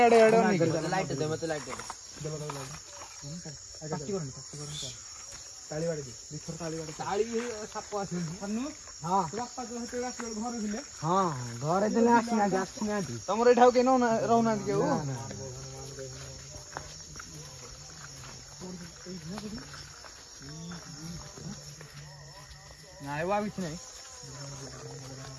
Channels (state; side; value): identical; both; correlation 1.00